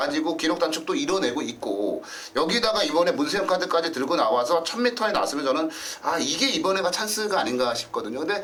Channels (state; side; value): identical; both; correlation 1.00